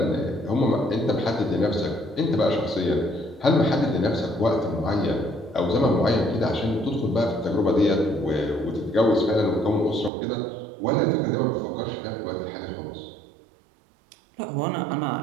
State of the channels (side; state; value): left; drops out; at 10.1 s